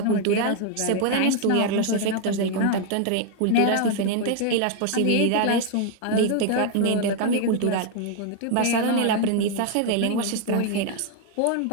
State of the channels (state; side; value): different; both; correlation 0.00